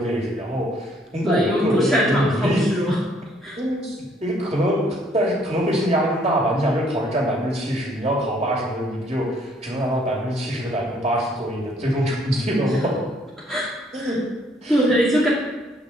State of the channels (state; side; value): normal; both; correlation 0.64